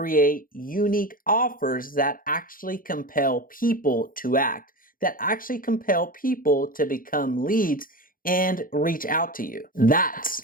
unique offers that actually compel people to act, that actually compel people to become leads and reach out to you.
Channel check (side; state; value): right; late; 0.41 ms